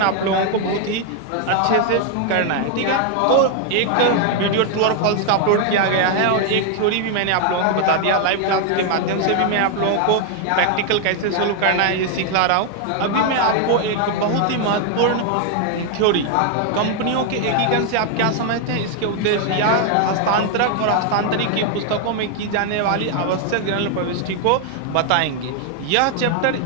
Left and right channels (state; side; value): different; both; correlation 0.00